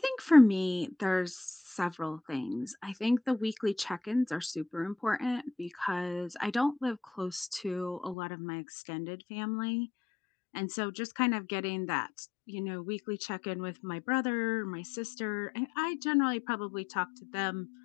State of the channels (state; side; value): drops out; right; at 8.2 s